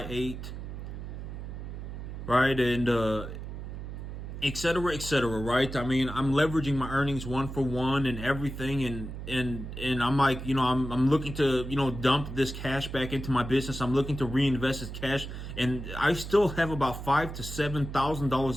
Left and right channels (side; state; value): right; noise; hum, 8 dB below the sound